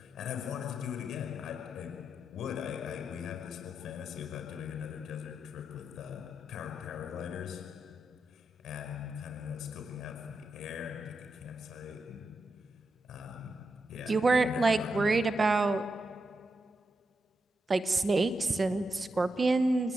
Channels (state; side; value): normal; both; correlation 0.86